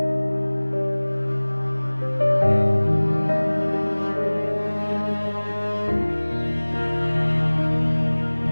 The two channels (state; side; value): inverted; both; correlation -1.00